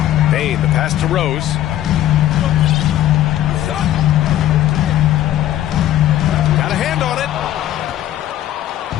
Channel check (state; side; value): quieter; right; 12.8 dB